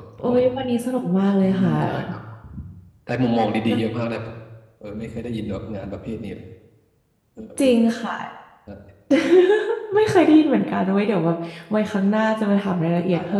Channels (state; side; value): identical; both; correlation 1.00